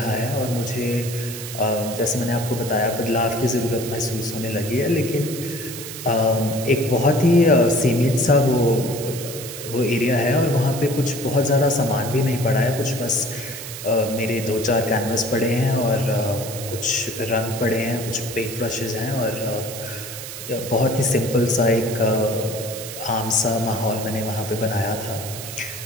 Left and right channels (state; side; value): noise; right; hiss, 10 dB below the sound